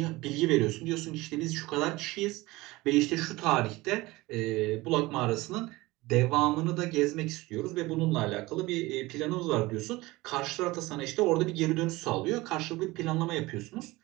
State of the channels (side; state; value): left; quieter; 20.5 dB